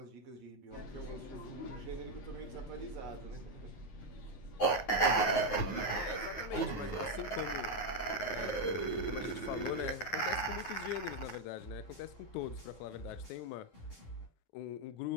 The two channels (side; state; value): right; late; 9.4 ms